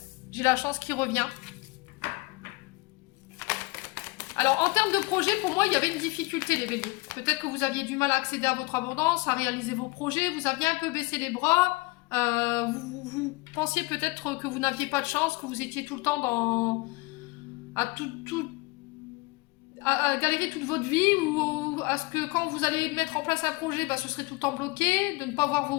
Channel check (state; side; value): quieter; right; 24.5 dB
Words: J'ai la chance qui revient. Alors, en termes de projet, pour moi, il y avait une difficulté, les béliers. Peut-être que vous aviez du mal à accéder à votre abondance, à réaliser vos projets. Vous aviez un peu baissé les bras. Vous pensiez peut-être que vous n'aviez pas de chance, que vous étiez tout le temps dans... à galérer toute votre vie, ou à ce que quand vous allez mettre en place un projet, bah, ce serait tout le temps bloqué, de ne pas voir